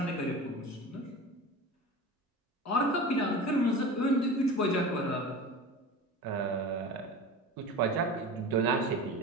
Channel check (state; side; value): normal; both; correlation 0.33